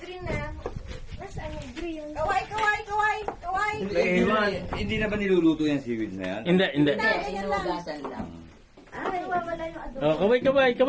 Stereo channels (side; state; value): both; identical; correlation 1.00